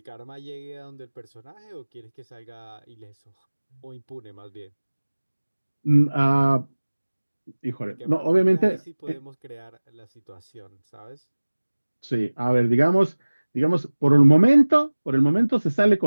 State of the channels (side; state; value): both; inverted; correlation -1.00